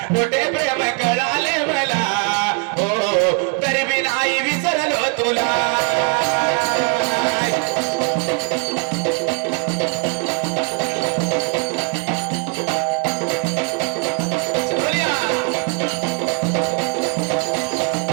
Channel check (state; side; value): quieter; left; 37.7 dB